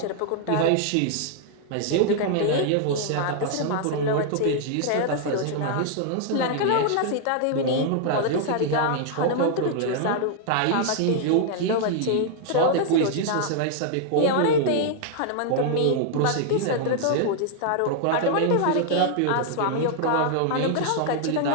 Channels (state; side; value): different; both; correlation 0.00